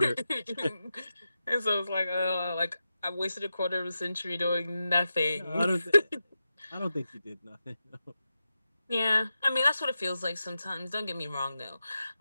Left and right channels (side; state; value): both; inverted; correlation -0.90